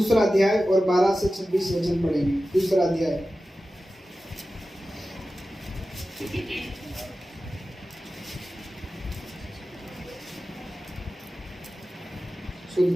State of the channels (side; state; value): both; normal; correlation 0.94